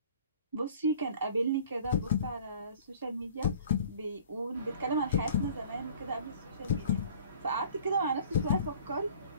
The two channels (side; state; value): both; inverted; correlation -0.49